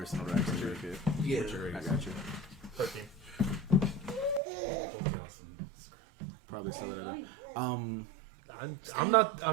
in order to actually make it. yeah. Which are I got you. 13. Both awesome. Probably sell it at I'm not the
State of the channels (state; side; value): drops out; left; at 4.4 s